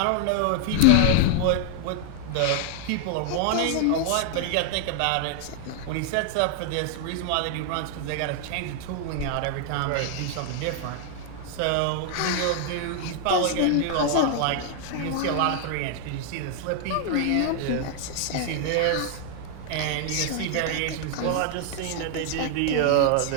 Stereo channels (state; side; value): different; both; correlation 0.00